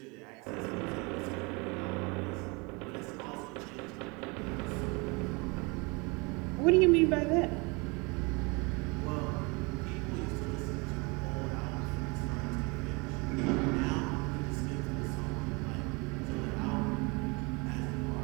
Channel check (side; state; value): left; quieter; 28.5 dB